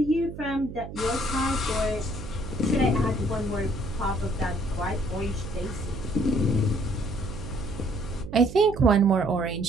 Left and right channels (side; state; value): right; noise; hum, 12 dB below the sound